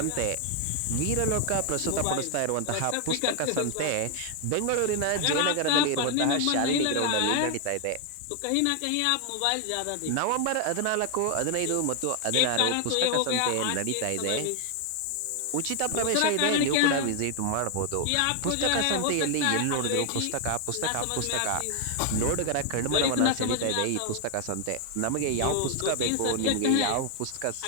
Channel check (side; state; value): both; different; correlation 0.00